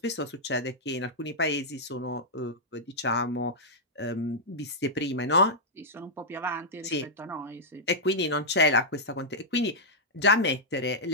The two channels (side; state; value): both; normal; correlation -0.07